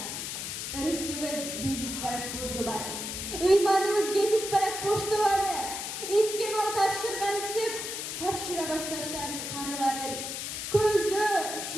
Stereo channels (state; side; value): noise; left; hiss, 5 dB below the sound